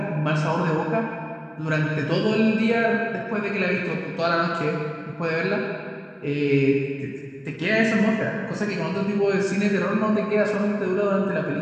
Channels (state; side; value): identical; both; correlation 1.00